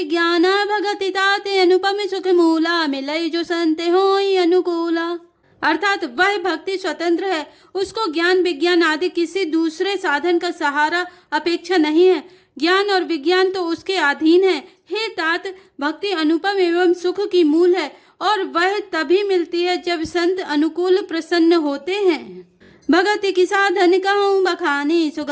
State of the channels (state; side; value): identical; both; correlation 1.00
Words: भगति ताते अनुपम सुख मूला, मिलई जो संते होई अनुकूला। अर्थात वह भक्ति स्वतंत्र है, उसको ज्ञान विज्ञान आदि किसी दूसरे साधन का सहारा अपेक्षा नहीं है। ज्ञान और विज्ञान तो उसके अधीन है। हे तात, भक्ति अनुपम एवं सुख की मूल है, और वह तभी मिलती है जब संत अनुकूल प्रसन्न होते हैं। भगति की साधन कहूँ बखानी,